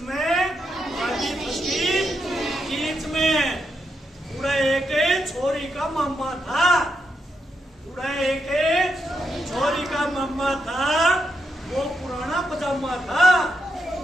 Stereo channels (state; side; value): normal; both; correlation 0.83